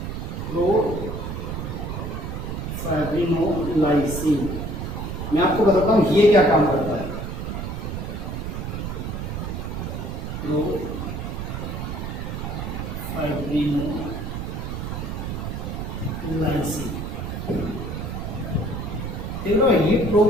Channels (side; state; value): right; noise; rumble, 5 dB below the sound